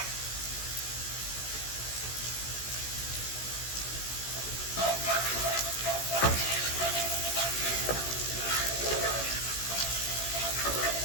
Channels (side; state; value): right; late; 16 ms